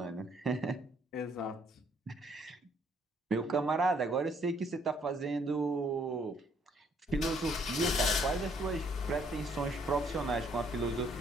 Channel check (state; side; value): normal; both; correlation 0.66